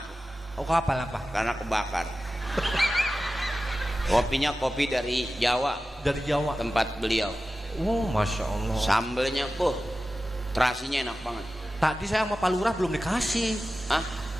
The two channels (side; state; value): both; normal; correlation 0.94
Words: Oh, kapal apa? Karena kebakar. Kopinya kopi dari Jawa. Dari Jawa. Tempat beliau. Oh, masya Allah. Sambelnya, terasinya enak banget. Tadi saya sama Pak Lurah belum dikasih. Hah?